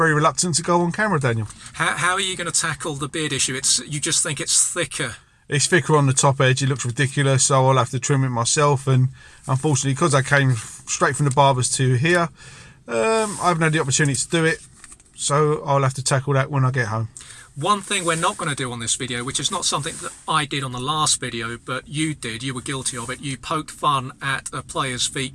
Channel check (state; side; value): identical; both; correlation 1.00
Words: reluctant to go on camera, Daniel. How are you going to tackle the beard issue? You just think it's thicker? It's thicker on the top edge, it looks ridiculous, so I'll have to trim it myself, and unfortunately, because I came straight from the barbers to here, I haven't had the opportunity to do it, so I'll have to tackle that when I get home. One thing we're not going to do on this video, which is not something that I did on the last video, but you did, you were guilty of it, you poked fun at a player's